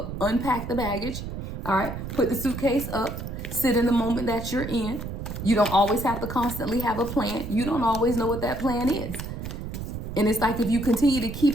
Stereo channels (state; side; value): noise; right; rumble, 7 dB below the sound